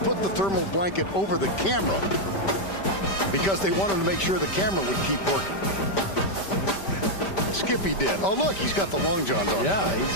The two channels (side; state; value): right; late; 5.1 ms